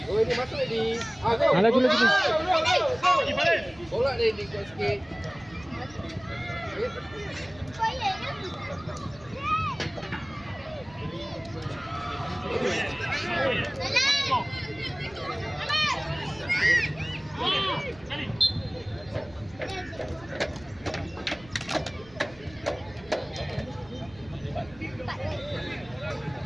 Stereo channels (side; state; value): right; noise; rumble, 22 dB below the sound